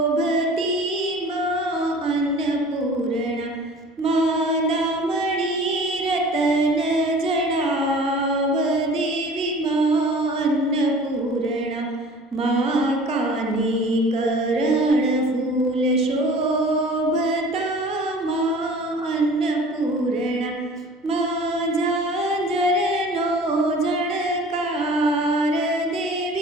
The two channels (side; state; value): both; normal; correlation 0.45